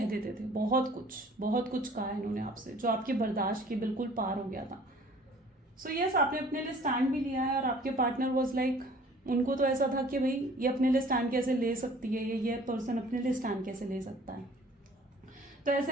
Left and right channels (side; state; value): both; normal; correlation 0.52